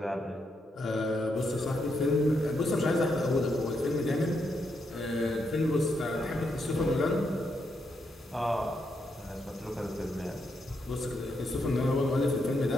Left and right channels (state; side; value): normal; both; correlation 0.80